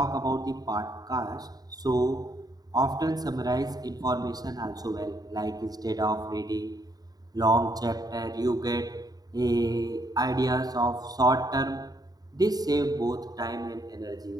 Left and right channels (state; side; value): late; left; 0.18 ms